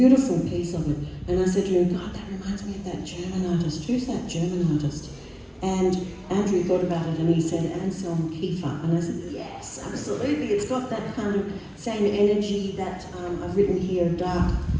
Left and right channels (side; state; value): both; identical; correlation 1.00